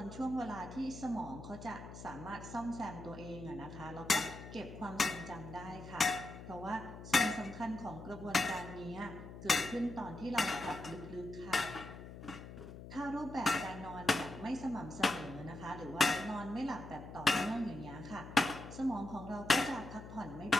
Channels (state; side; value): noise; left; hum, 12 dB below the sound